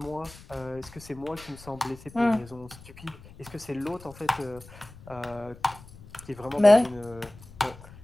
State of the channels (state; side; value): noise; left; rumble, 19 dB below the sound